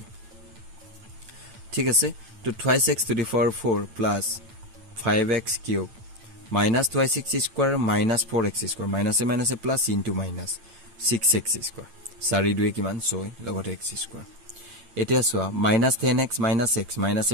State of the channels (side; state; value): left; late; 8.9 ms